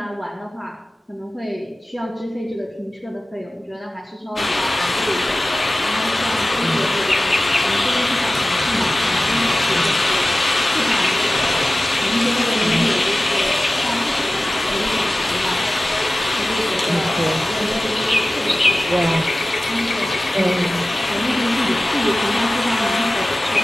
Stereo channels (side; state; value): both; normal; correlation 0.96